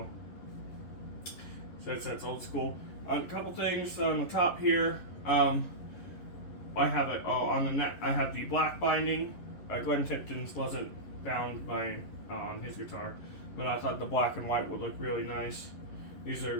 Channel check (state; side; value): late; right; 11 ms